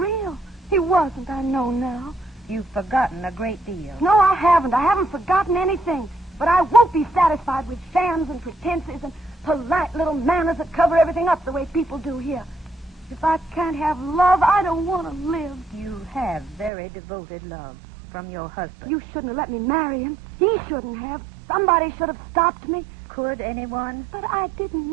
He wasn't, I know now. You've forgotten a great deal. No, I haven't. I haven't forgotten anything. But I won't be satisfied with shams and pretenses and polite little manners that cover everything up the way people do here. If I can't have love, I don't want to live. You have very devoted love from your husband. You shouldn't have let me marry him. He shouldn't have. Somebody should have stopped me. Could anyone? But I didn't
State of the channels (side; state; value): left; drops out; at 16.7 s